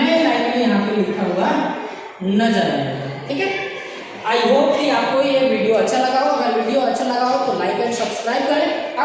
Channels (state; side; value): identical; both; correlation 1.00